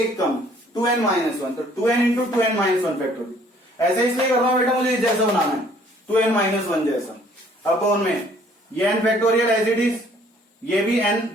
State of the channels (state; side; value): normal; both; correlation 0.59